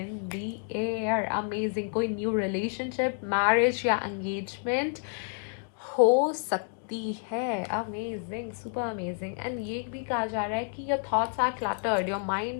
the air. Amazing, कोई न्यू रिलेशनशिप, मैरिज या एंगेजमेंट हो सकती है। Amazing, super amazing. एंड ये भी कहा जा रहा है कि your thoughts are cluttered, your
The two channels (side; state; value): right; silent; 58 dB below the other